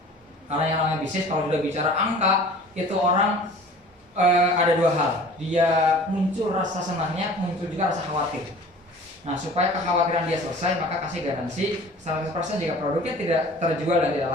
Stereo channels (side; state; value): both; normal; correlation 0.45